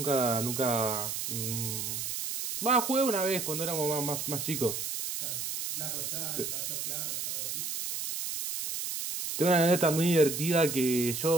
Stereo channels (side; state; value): right; noise; hiss, 4 dB below the sound